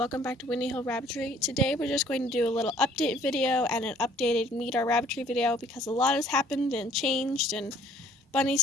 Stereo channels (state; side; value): normal; both; correlation 0.58